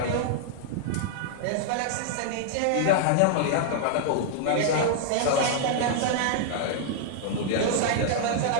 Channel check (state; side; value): different; both; correlation -0.01